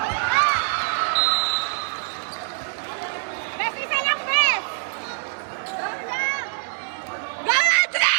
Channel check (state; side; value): silent; left; 63 dB below the other